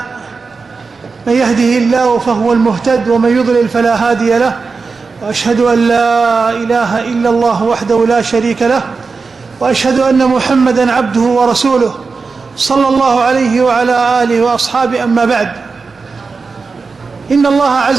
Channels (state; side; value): quieter; left; 4.5 dB